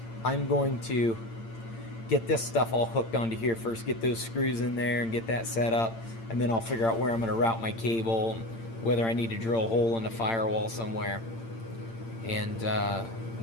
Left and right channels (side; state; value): right; late; 8.8 ms